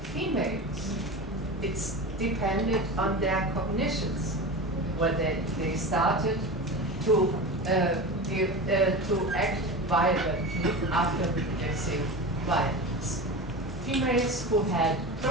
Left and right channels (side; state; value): both; normal; correlation 0.28